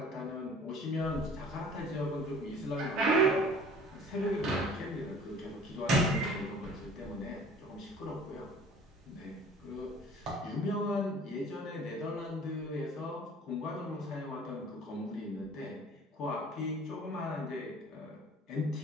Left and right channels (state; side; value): normal; both; correlation 0.48